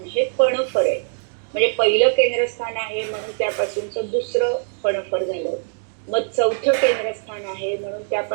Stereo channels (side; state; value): left; silent; digital silence